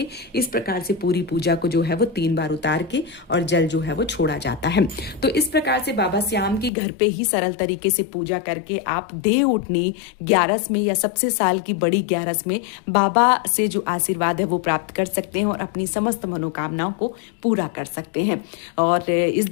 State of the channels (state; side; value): drops out; right; at 6.7 s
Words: इस प्रकार से पूरी पूजा को जो है वो 3 बार उतार के और जल जो है वो छोड़ा जाता है। तो इस प्रकार से बाबा श्याम की घर पे ही सरल तरीके से पूजा करके आप देवउठनी 11 में या सबसे साल की बड़ी 11 में बाबा से जो आशीर्वाद है वो प्राप्त कर सकते हैं और अपनी समस्त मनोकामनाओं को पूरा कर सकते हैं। और इस